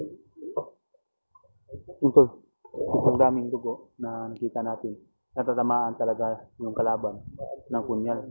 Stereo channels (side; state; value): both; inverted; correlation -1.00